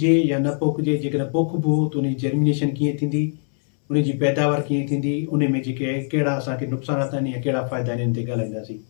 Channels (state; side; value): silent; right; 64 dB below the other